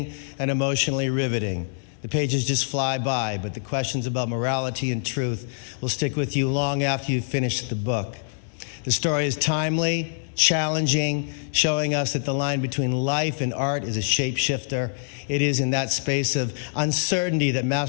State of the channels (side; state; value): right; silent; digital silence